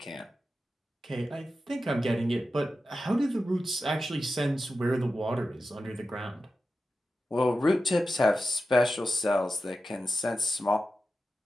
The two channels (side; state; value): both; normal; correlation 0.92